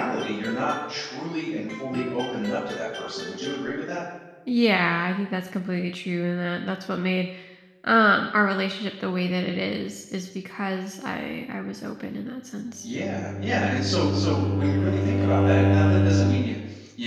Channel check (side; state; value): both; identical; correlation 1.00